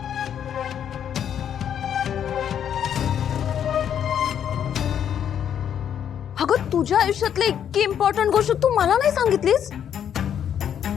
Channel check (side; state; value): right; quieter; 9.1 dB